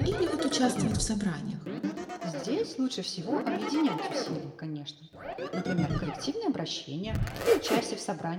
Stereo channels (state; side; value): identical; both; correlation 1.00